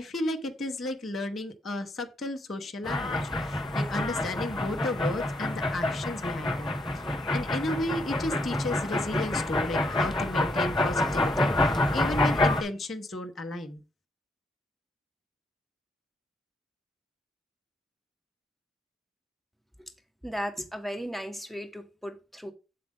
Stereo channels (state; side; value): normal; both; correlation 0.75